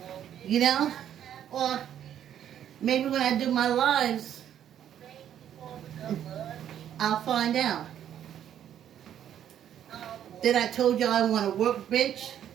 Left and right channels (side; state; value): left; quieter; 10.2 dB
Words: You know? Or maybe when I do my lives, I'll find out. Then I told y'all I want to work bench,